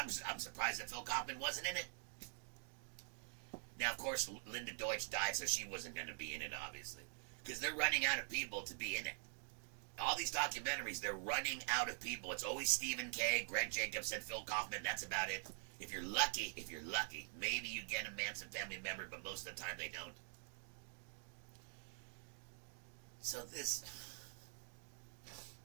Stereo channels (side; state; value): left; silent; digital silence